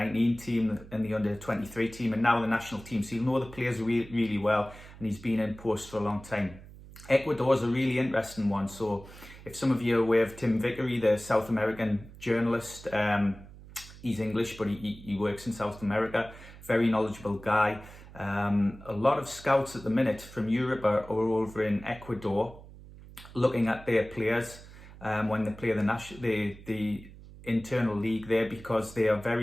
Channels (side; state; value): right; noise; hum, 18 dB below the sound